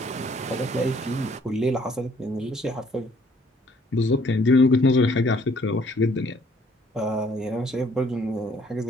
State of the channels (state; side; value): normal; both; correlation 0.62